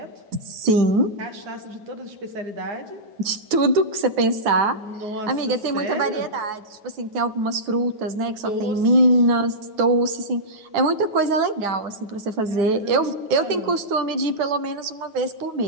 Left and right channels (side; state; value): left; late; 9.4 ms